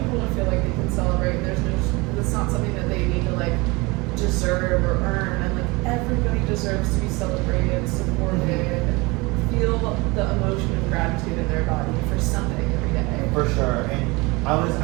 to feel like they can celebrate. It's not something that they need to like deserve or earn. And like everybody deserves to be celebrated, supported, feel the emotion of gratitude in their body for something every day. For sure. And I was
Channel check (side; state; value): left; quieter; 24.9 dB